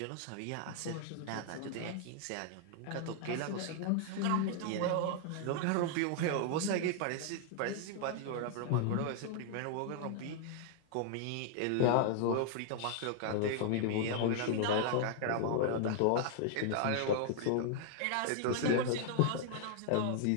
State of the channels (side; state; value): both; different; correlation 0.00